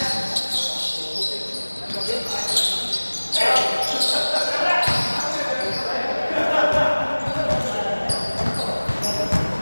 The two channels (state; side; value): inverted; both; correlation -1.00